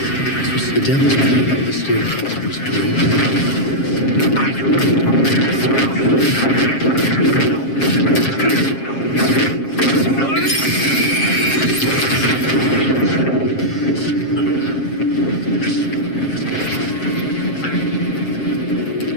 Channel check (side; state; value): right; late; 7.4 ms